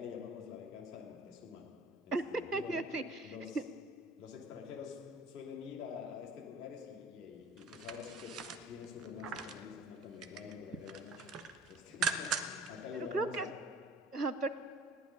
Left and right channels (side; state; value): both; normal; correlation 0.48